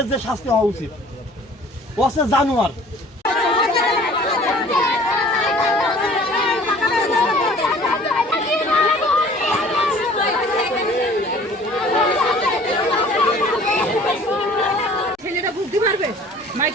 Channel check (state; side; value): normal; both; correlation 0.50